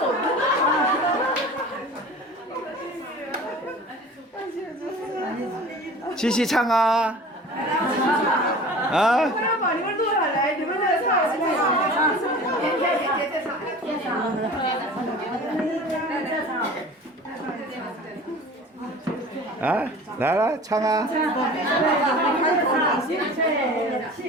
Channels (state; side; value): normal; both; correlation 0.40